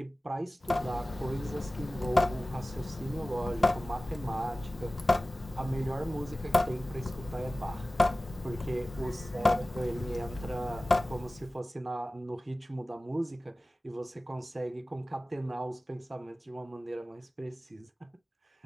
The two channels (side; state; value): both; normal; correlation 0.97